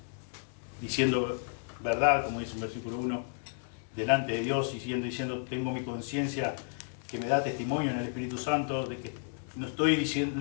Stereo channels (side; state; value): right; silent; 56 dB below the other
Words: diciendo verdad, como dice en versículo 1, delante de Dios, y diciendo, tengo mi conciencia que me da testimonio en el Espíritu Santo de que no estoy